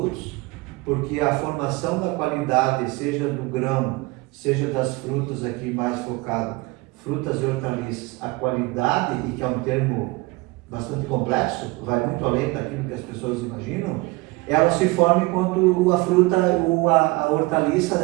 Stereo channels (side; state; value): left; quieter; 23.2 dB